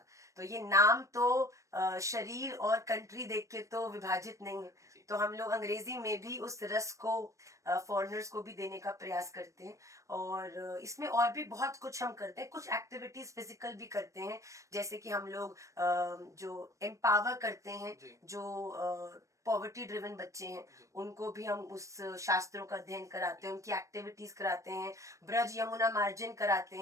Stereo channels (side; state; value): left; late; 0.15 ms